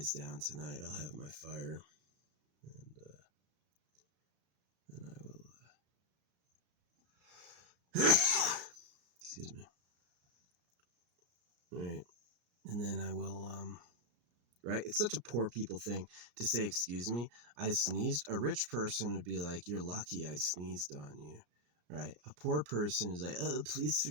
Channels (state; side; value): late; left; 34 ms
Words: down tonight, I'll have my fire, and then I will. Excuse me. All right, and then I will. Right? It's such a poor people thing to say, excuse me, I sneezed. A rich person would be like, you're lucky I sneezed on you, right? A poor person is like, oh, please